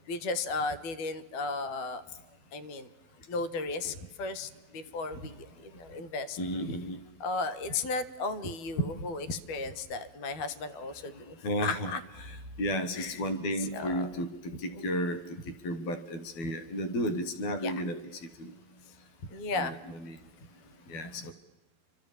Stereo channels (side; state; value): right; late; 12 ms